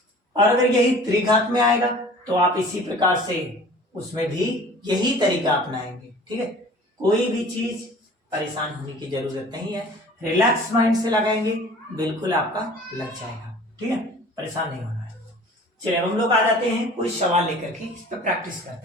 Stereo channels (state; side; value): normal; both; correlation 0.45